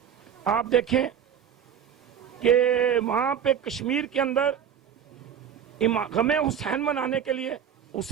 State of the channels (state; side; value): quieter; left; 8.6 dB